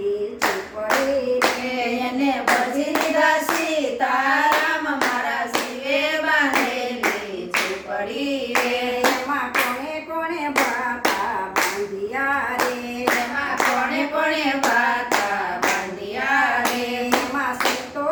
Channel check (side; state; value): both; identical; correlation 1.00